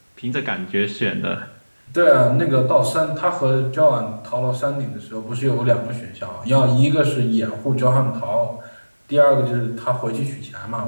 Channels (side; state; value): both; inverted; correlation -1.00